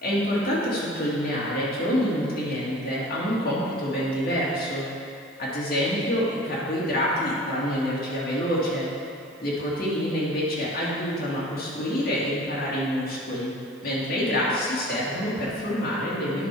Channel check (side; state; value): right; noise; hiss, 29 dB below the sound